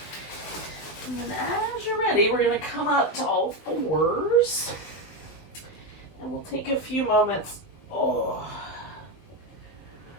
And then as you're ready, we're going to come up to all fours. And we'll take a few moments to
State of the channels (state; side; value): late; right; 20 ms